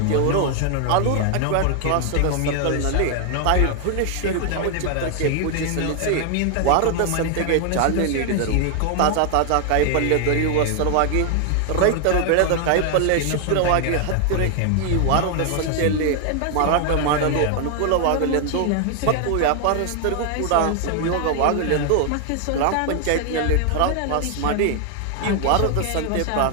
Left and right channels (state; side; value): different; both; correlation 0.00